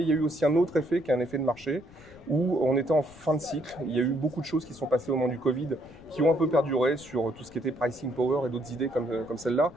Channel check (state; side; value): noise; left; rumble, 23 dB below the sound